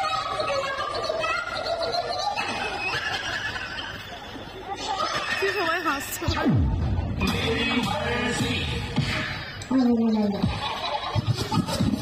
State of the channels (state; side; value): identical; both; correlation 1.00